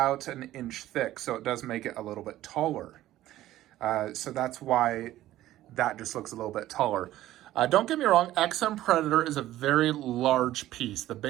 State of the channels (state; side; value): quieter; left; 14.4 dB